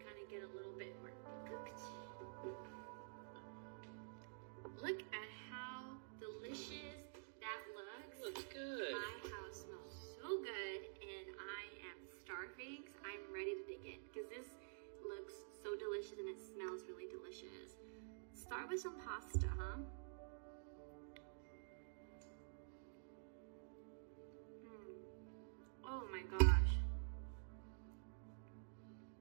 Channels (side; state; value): left; silent; digital silence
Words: of get a little bit more cooked. Look at how delicious that looks. Looks good. My house smells so good and I am starving, so I'm ready to dig in because this looks so delicious and it smells really delicious. Start with some pasta, huh? Oh my gosh.